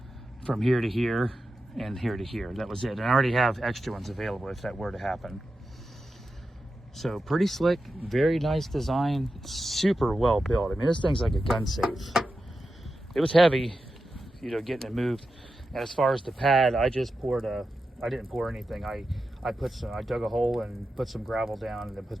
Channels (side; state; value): both; normal; correlation 0.91